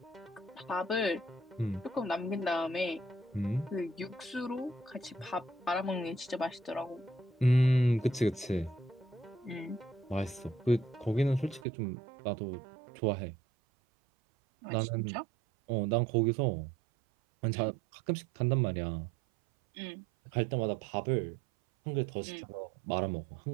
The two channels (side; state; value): left; drops out; at 11.7 s